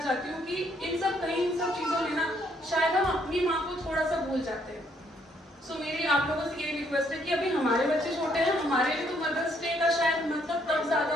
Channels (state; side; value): normal; both; correlation 0.69